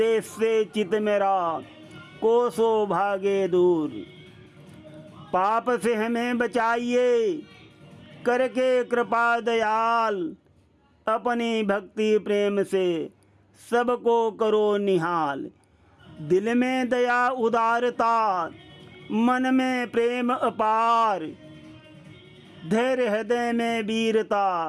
से चित मेरा कोसों भागे दूर। पाप से हमें बचाइए करके कृपा दयाल, अपनी भक्ति प्रेम से सबको करो निहाल। दिल में दया उदारता, मन में प्रेम अपार, धैर्य हृदय में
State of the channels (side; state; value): both; identical; correlation 1.00